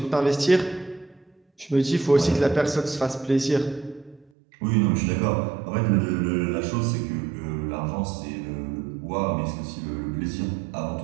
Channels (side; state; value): left; drops out; at 4.2 s